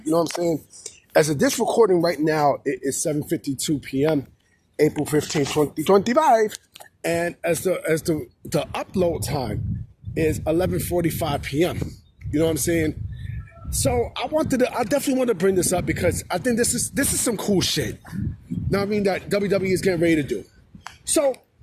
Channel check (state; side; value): identical; both; correlation 1.00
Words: You know what I'm saying? As of this recording right now, it is 7:52 p.m., April 15, 2025. And as the upload time is 11:45 p.m. You know what I'm saying? So I definitely want to bring this up because I think this is some cool shit. Now I mean that WWE is getting ready to do. So,